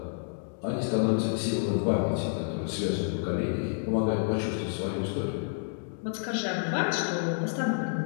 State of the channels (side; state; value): right; silent; digital silence